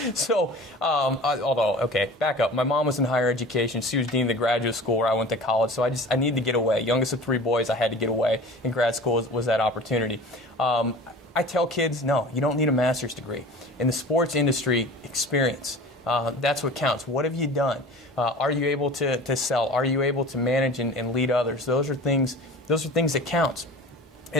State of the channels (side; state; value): both; normal; correlation 0.39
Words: So, back up. My mom was in higher education. She was dean of the graduate school where I went to college. So I needed to get away. Youngest of 3 boys, I had to get away. And grad school was that opportunity. I tell kids, no, you don't need a master's degree. In the sports industry, experience. That's what counts. What have you done? Are you able to sell? Are you able to manage and lead others? Those are things that count.